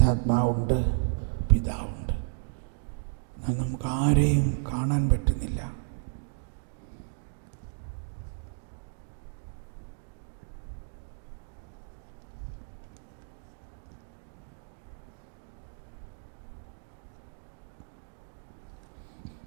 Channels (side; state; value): left; silent; digital silence